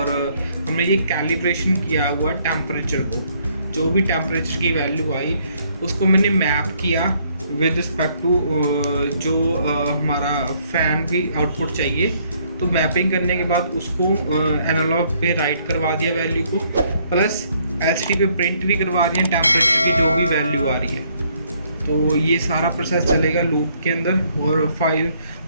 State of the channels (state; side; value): inverted; both; correlation -0.68